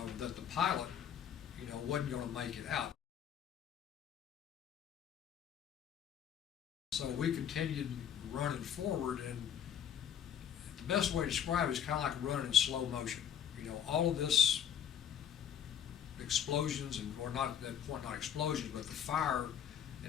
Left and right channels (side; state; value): right; quieter; 9.2 dB